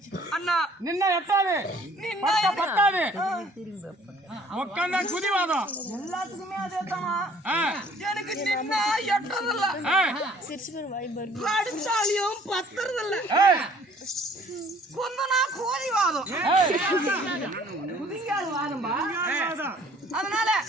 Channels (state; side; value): normal; both; correlation 0.56